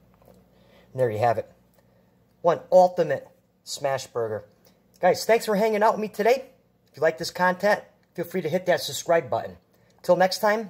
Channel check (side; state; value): both; identical; correlation 1.00